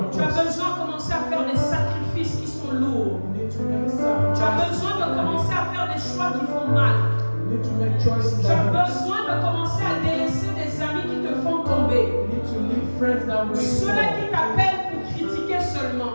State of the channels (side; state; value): both; inverted; correlation -1.00